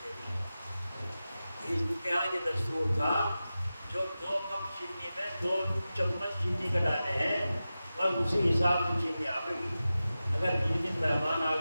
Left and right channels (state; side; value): inverted; both; correlation -0.94